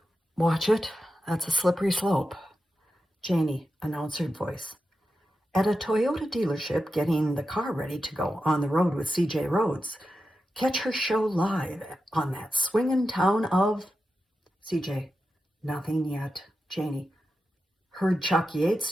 watch it. That's a slippery slope. Janie, announcer voice. At a Toyota dealership, getting the car ready to go on the road with CJ Rhodes. Catch her show live on that swingin' town of... CJ, nothing yet. Janie, heard Chuck Yates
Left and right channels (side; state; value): both; normal; correlation 0.90